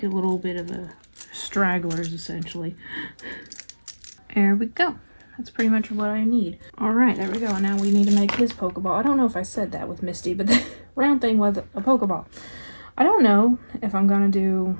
a little bit of a stragglers essentially. There we go. That's pretty much what I need. Alright, there we go. And now we need to make his Pokeball. I don't know if I said that with Misty, but the round thing was a Pokeball. I don't know if I'm gonna do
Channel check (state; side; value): inverted; both; correlation -1.00